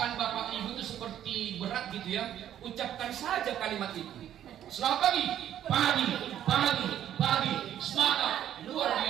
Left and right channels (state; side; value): quieter; left; 11.0 dB